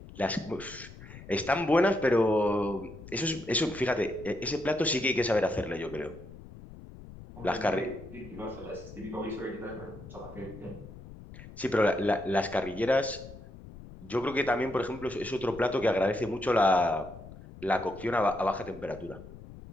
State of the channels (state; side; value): noise; left; rumble, 16 dB below the sound